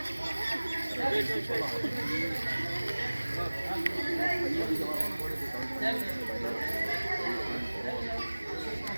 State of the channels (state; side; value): inverted; both; correlation -1.00